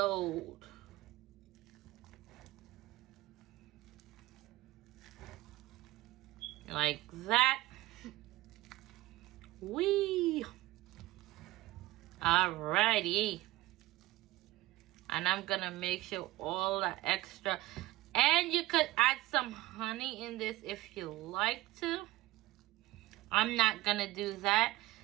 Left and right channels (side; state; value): left; quieter; 18.1 dB